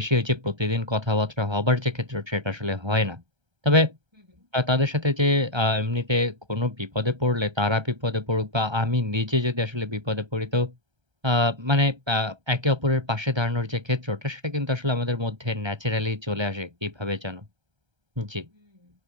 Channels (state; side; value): late; left; 1.3 ms